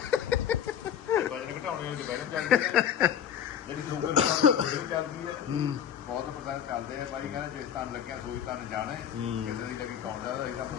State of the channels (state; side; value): quieter; right; 9.2 dB